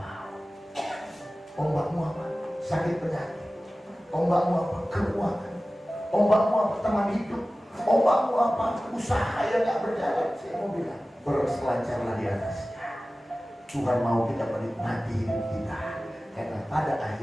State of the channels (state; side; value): normal; both; correlation 0.97